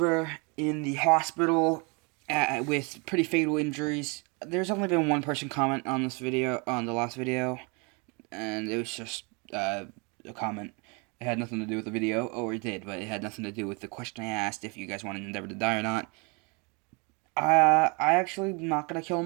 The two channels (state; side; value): quieter; left; 31.7 dB